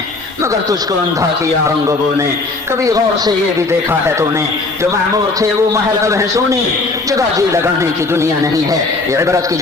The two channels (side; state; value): right; quieter; 3.5 dB